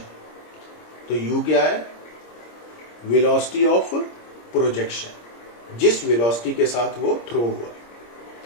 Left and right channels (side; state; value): right; late; 26 ms